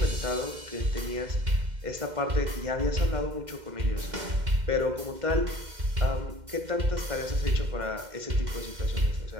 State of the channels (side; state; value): left; late; 2.1 ms